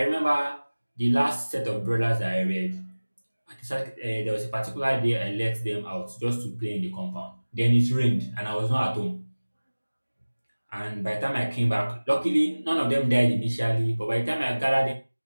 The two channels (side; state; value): both; inverted; correlation -1.00